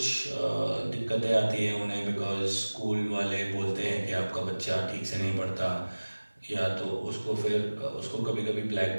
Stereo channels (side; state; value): both; inverted; correlation -1.00